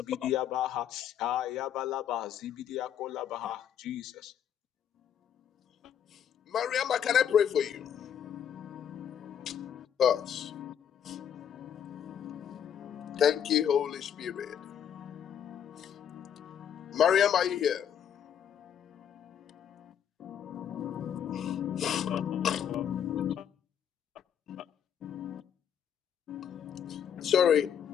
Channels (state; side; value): quieter; right; 8.9 dB